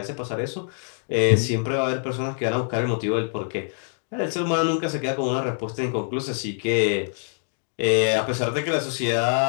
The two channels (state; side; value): silent; right; 62 dB below the other